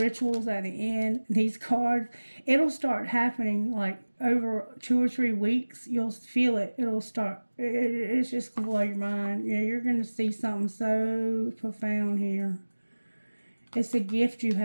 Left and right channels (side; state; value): both; inverted; correlation -1.00